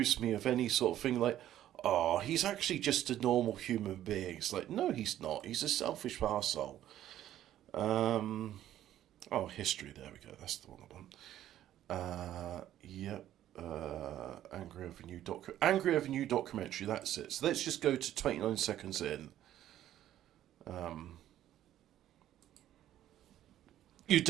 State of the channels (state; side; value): quieter; left; 12.3 dB